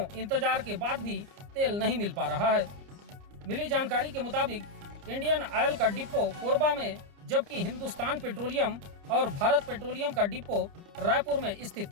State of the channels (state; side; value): late; left; 30 ms